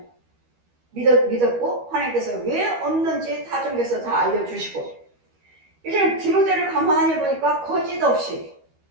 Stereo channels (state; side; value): late; left; 12 ms